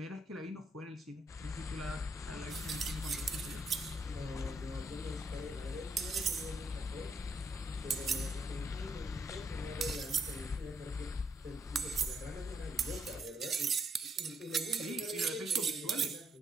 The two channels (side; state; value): both; normal; correlation 0.74